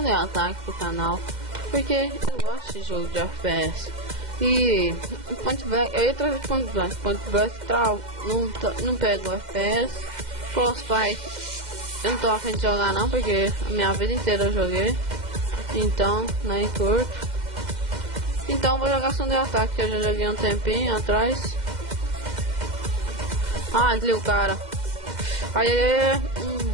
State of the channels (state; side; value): late; left; 2.1 ms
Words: Attack pro canal, porque eu gosto de jogo de FPS. E Point Blank, eu ia trazer Point Blank não pega o FPS. Frostbite eu não tô a fim de jogar não, porque a minha vida inteira eu joguei. Então, nem curto. Então vou jogar Sunday Attack, que eu já joguei um tempinho atrás. Ah, desliga o cara.